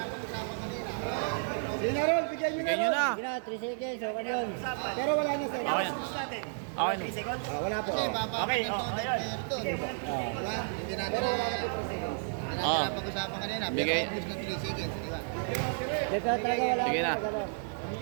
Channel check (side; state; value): left; silent; digital silence